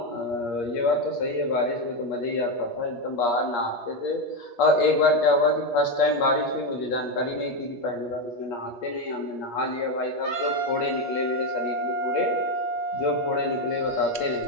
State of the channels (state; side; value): late; right; 8.4 ms